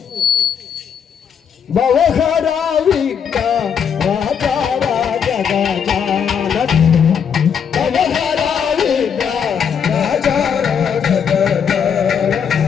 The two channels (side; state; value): right; quieter; 7.4 dB